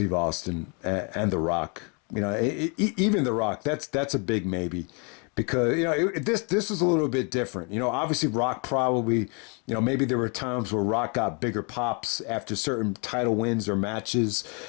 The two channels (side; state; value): right; quieter; 35.1 dB